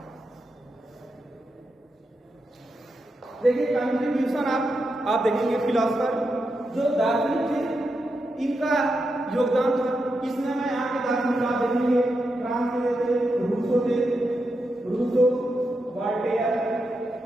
देखिए कंट्रीब्यूशन आप देखेंगे फिलोसफर जो दार्शनिक थे इनका योगदान था। इसमें मैं यहाँ के दार्शनिक आप देखेंगे फ्रांस के थे, रूसो, वॉल्टेयर,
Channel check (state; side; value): normal; both; correlation 0.86